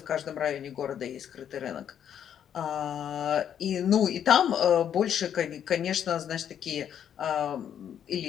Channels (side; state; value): right; quieter; 9.2 dB